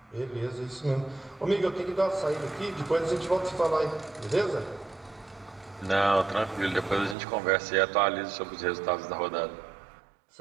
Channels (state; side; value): drops out; left; at 7.2 s